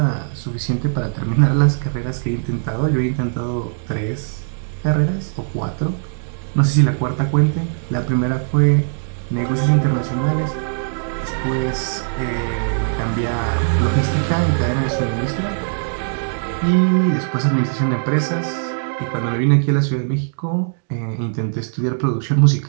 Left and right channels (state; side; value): silent; left; digital silence